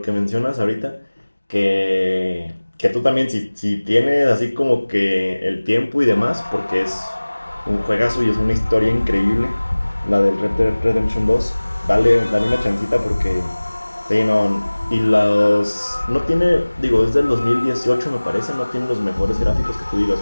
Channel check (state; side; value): inverted; both; correlation -1.00